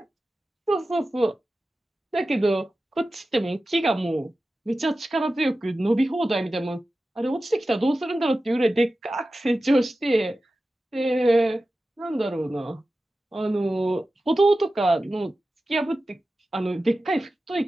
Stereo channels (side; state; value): both; normal; correlation 0.94